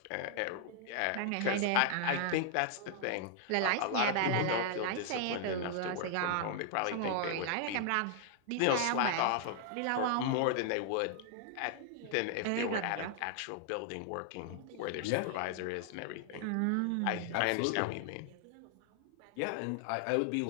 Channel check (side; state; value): both; different; correlation 0.00